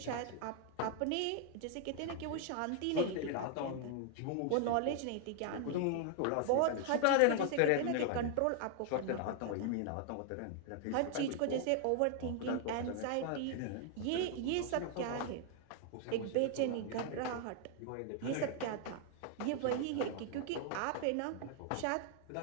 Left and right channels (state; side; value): different; both; correlation 0.00